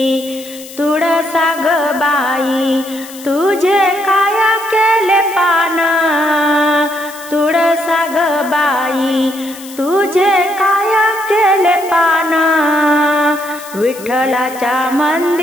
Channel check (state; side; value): noise; left; hiss, 17 dB below the sound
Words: तुळसा ग बाई तुझे काय केले पान, तुळसा ग बाई तुझे काय केले पान, विठ्ठलाच्या